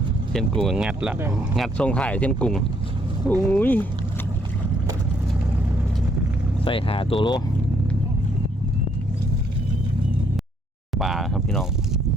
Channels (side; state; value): both; normal; correlation 0.69